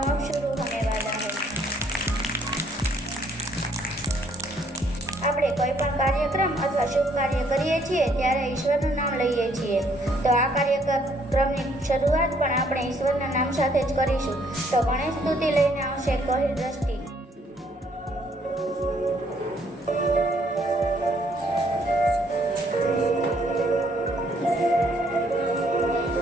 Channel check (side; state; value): both; normal; correlation 0.66